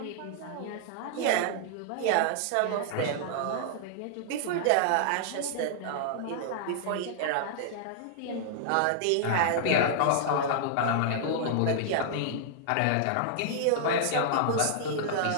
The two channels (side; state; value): both; different; correlation -0.01